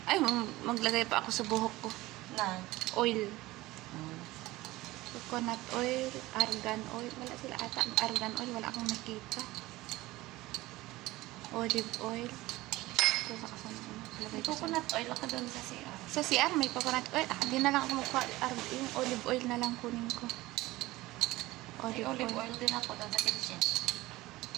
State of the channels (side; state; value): left; quieter; 18.8 dB